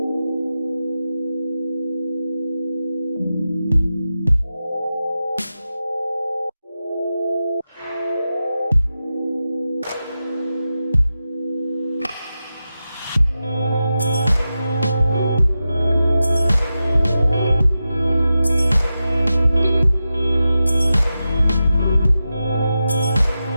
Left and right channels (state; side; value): inverted; both; correlation -0.91